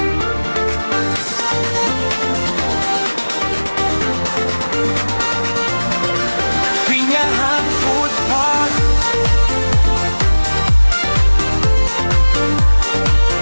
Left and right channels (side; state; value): both; inverted; correlation -1.00